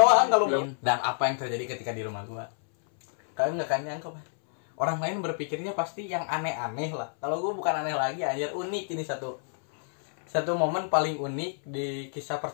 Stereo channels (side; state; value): right; silent; 59 dB below the other